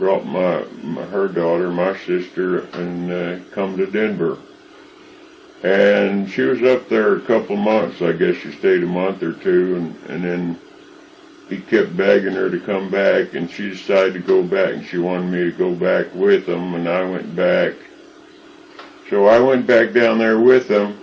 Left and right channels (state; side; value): identical; both; correlation 1.00